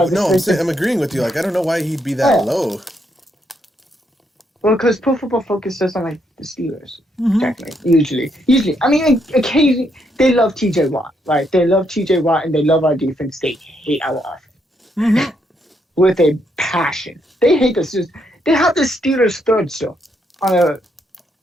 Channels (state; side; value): normal; both; correlation 0.76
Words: I'm agreeing with you. Like, I don't know why he'd be that low. Well, because Pro Football Focus doesn't like the Steelers, technically, usually. I mean, occasionally, they love TJ Watt, right? They love TJ Watt, and they love our defense. They hate our offense. With a passion. They hate the Steelers. They have the Steelers third still